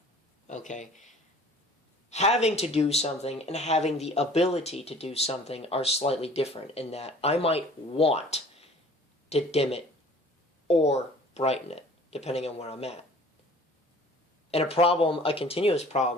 Okay? Having to do something and having the ability to do something are slightly different, in that I might want to dim it or brighten it, depending on where I'm at. And a continuous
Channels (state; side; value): normal; both; correlation 0.49